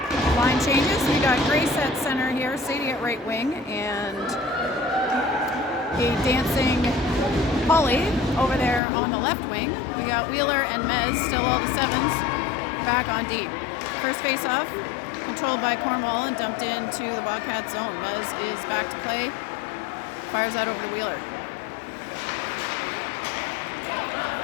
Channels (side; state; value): right; drops out; at 8.8 s